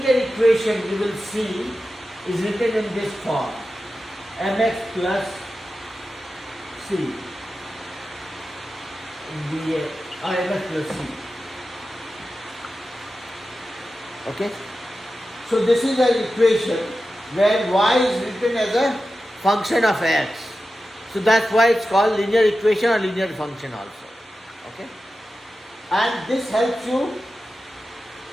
equation you will see is written in this form: mx plus c dA or mx plus c. Okay? So this is an equation where y is written as a function of x. So that's why it's called linear equation or linear function also. Okay? And this helps you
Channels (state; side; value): normal; both; correlation 0.93